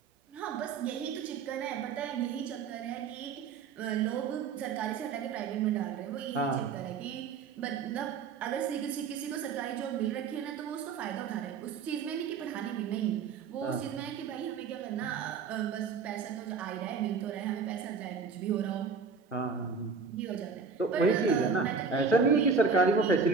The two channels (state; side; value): quieter; left; 5.4 dB